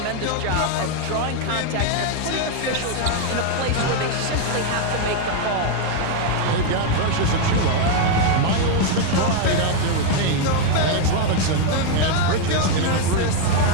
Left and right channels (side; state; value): both; different; correlation 0.01